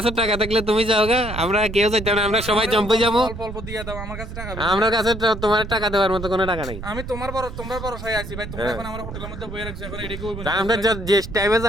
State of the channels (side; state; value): right; noise; rumble, 9 dB below the sound